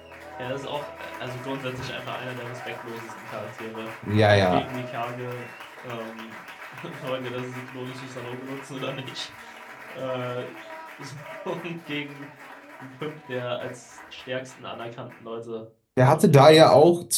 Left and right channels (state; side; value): identical; both; correlation 1.00